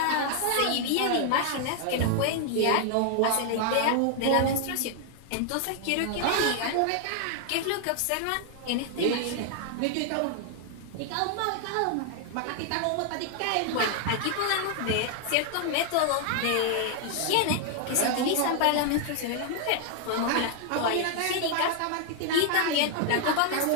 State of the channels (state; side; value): different; both; correlation 0.00